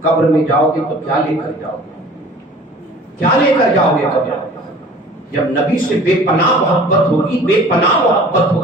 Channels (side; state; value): both; normal; correlation 0.47